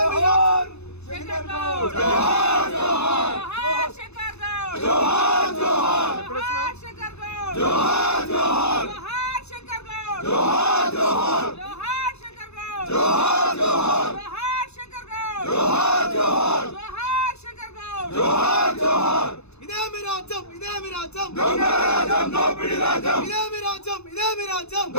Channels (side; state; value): right; late; 0.80 ms